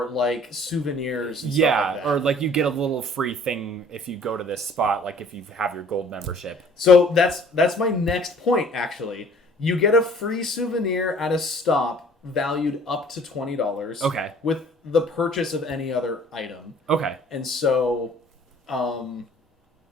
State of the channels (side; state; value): both; normal; correlation 0.53